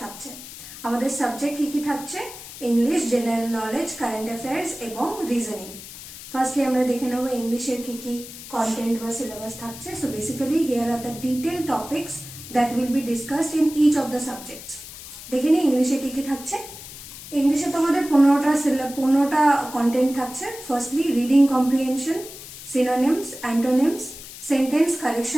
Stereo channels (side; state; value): left; noise; hiss, 14 dB below the sound